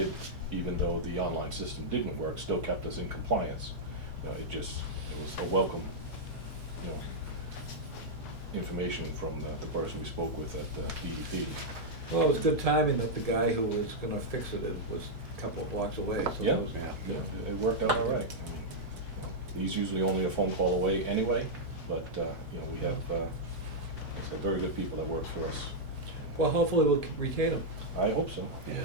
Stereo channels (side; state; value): right; late; 2.4 ms